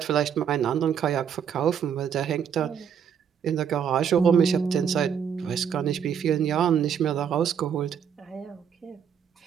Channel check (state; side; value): quieter; left; 7.9 dB